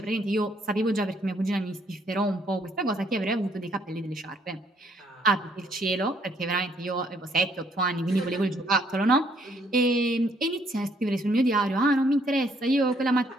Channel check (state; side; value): normal; both; correlation 0.67